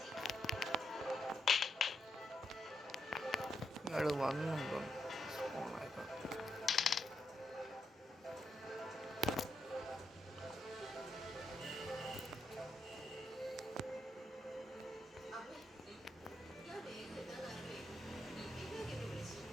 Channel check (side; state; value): both; normal; correlation 0.81